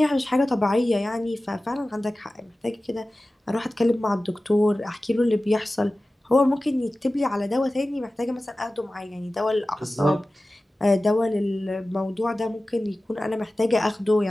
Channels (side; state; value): both; normal; correlation 0.96